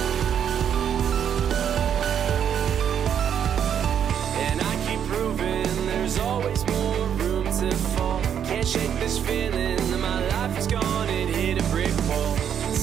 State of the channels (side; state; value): left; quieter; 8.7 dB